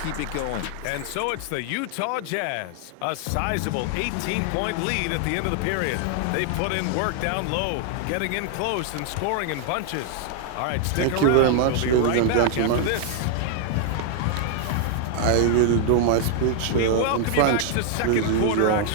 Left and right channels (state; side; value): different; both; correlation 0.00